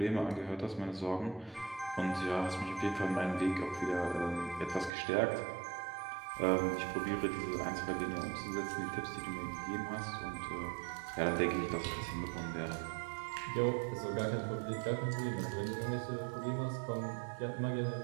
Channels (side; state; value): left; drops out; at 4.9 s